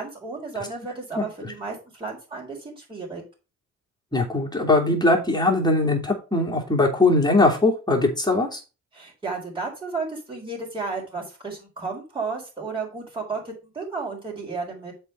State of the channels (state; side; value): normal; both; correlation 0.34